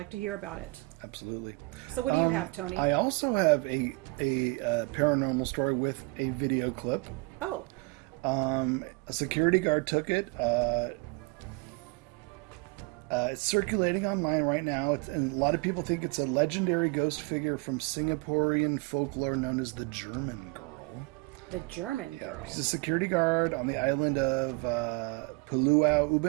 to hear about it. Absolutely. So what do you have, Tony? I also have a paranormal story with a video clip. Oh. A security guard took it. It's circulating online right now, and a lot of people think it's a legendary ghost figure from Singaporean folklore known as the German Girl. The German Girl. She's a security guard on the island of Pulau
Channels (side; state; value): left; quieter; 27.3 dB